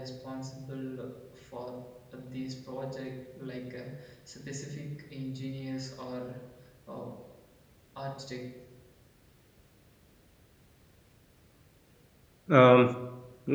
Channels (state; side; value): identical; both; correlation 1.00